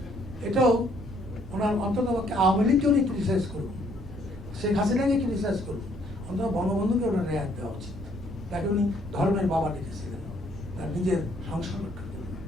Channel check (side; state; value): both; normal; correlation 0.65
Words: এটাও ওনার অন্তত আওয়ামী লীগকে উনি ক্রিটিসাইজ করুন, শেখ হাসিনাকে ক্রিটিসাইজ করুন, অন্তত বঙ্গবন্ধুকে ওনার রেয়াত দেওয়া উচিত। তাকে উনি ধর্মের বাবা ডেকেছিলেন, তার নিজের সংসার রক্ষা করলেন।